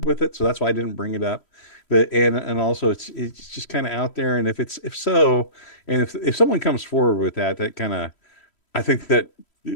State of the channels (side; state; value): right; late; 3.1 ms